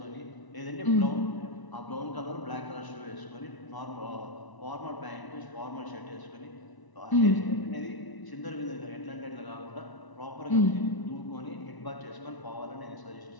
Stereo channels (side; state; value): right; late; 1.0 ms